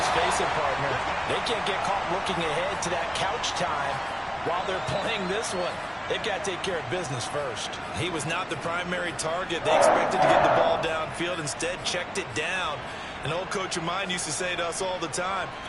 face it, partner. They can't get caught looking ahead to that couch time while they're playing this one. They've got to take care of business first. He was not the primary target. They expected to get the ball downfield, instead checked it down. An old coach of mine used to say to us all the time,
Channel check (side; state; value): both; identical; correlation 1.00